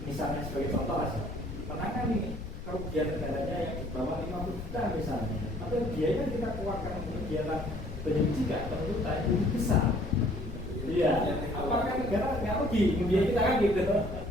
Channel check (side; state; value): left; noise; rumble, 8 dB below the sound